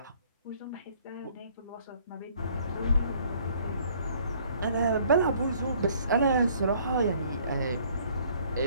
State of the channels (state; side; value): inverted; both; correlation -0.60